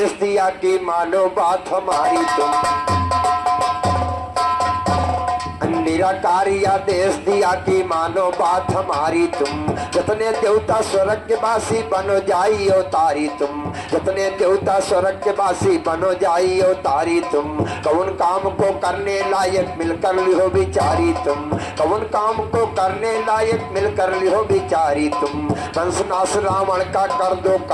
दिया कि मानो बात हमारी तुम, निराकारी आदेश दिया कि मानो बात हमारी तुम। जितने देवता स्वर्ग के वासी बनो जाई अवतारी तुम, जितने देवता स्वर्ग के वासी बनो जाई अवतारी तुम। कौन काम को करने लायक मिलकर लिहो बिचारी तुम, कौन काम को करने लायक मिलकर लिहो बिचारी तुम। पंचनाश रावण का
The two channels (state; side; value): identical; both; correlation 1.00